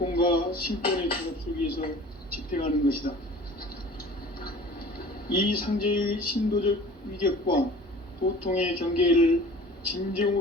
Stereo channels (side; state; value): both; normal; correlation 0.44